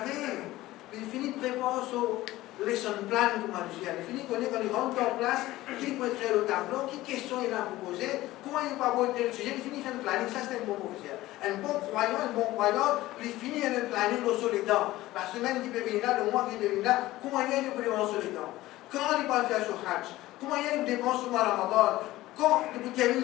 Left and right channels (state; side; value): quieter; right; 16.9 dB